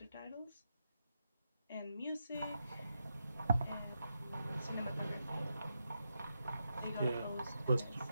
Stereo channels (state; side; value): inverted; both; correlation -0.86